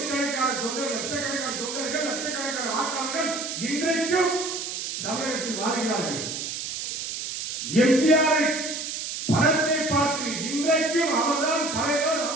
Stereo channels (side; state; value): right; noise; hiss, 5 dB below the sound